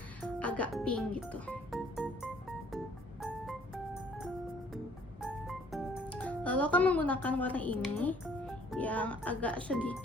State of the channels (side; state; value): both; normal; correlation 0.59